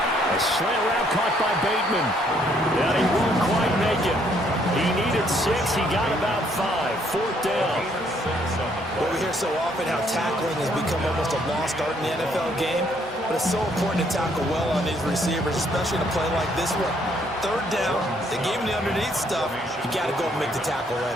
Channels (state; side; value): normal; both; correlation 0.68